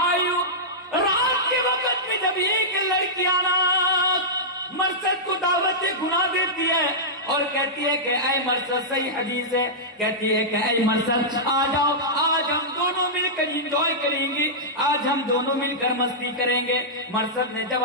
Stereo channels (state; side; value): normal; both; correlation -0.13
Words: رات کے وقت میں جب ایک لڑکی مرصد کو دعوت گناہ دیتی ہے اور کہتی ہے کہ اے مرصد، صحیح حدیث ہے، کہتی ہے کہ اے مرصد آ جاؤ، آج ہم دونوں مل کر انجوائے کریں گے، آج ہم دونوں مل کر مستی کریں گے۔ مرصد نے